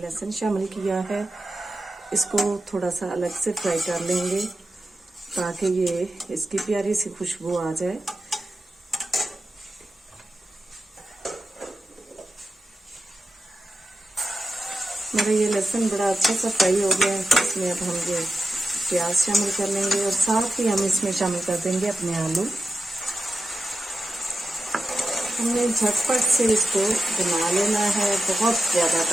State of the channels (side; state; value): both; normal; correlation 0.92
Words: शामिल किया है। इसको थोड़ा सा अलग से फ्राई कर लेंगे ताकि ये इसकी प्यारी सी खुशबू आ जाए। मेरा ये लहसुन बड़ा अच्छा सा फ्राई हो गया है। इसमें अब हम ये प्याज शामिल कर लेंगे और साथ ही हम इसमें शामिल कर देंगे अपने आलू। हमने झटपट से इसको बना लेना है, बहुत ज़्यादा